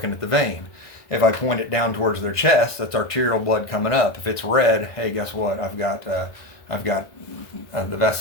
at the vein. If I point it down towards their chest, that's arterial blood coming up. If it's red, hey, guess what? I've got the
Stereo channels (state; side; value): late; right; 1.5 ms